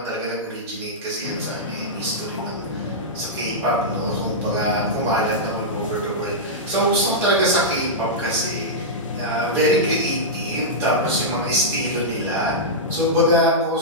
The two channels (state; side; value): normal; both; correlation -0.11